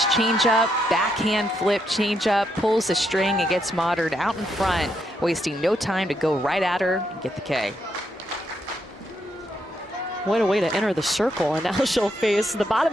changeup, backhand flip changeup, pulls the string and gets Modern out in front, wasting no time to go right at her and get the K. What a way to enter the circle, and now she'll face the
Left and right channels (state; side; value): normal; both; correlation 0.78